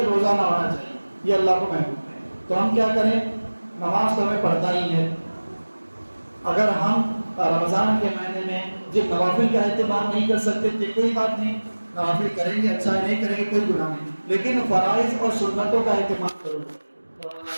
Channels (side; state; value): both; inverted; correlation -1.00